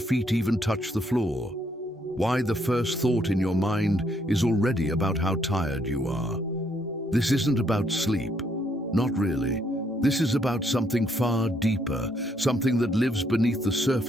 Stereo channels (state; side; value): normal; both; correlation 0.71